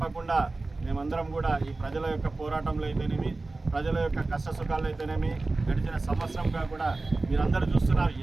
మేమందరం కూడా ఈ ప్రజల యొక్క పోరాటంలో అయితేనేమి, ప్రజల యొక్క కష్ట సుఖాలు అయితేనేమి, గడిచిన సంవత్సరంగా కూడా మీరందరూ చూస్తున్నారు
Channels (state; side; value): quieter; left; 3.3 dB